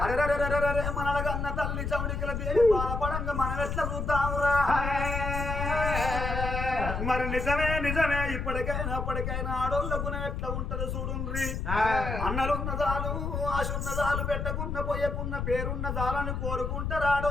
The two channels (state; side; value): noise; left; rumble, 3 dB below the sound